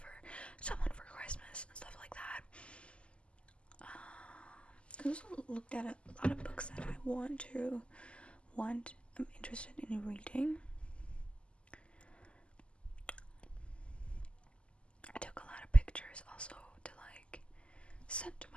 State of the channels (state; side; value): late; right; 0.054 ms